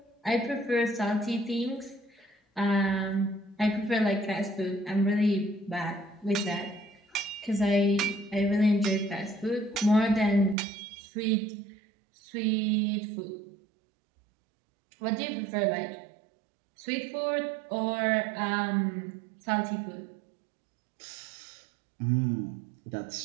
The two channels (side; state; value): left; drops out; at 10.6 s